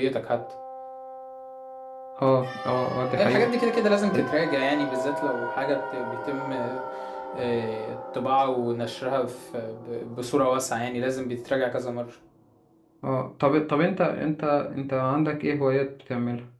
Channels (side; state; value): both; identical; correlation 1.00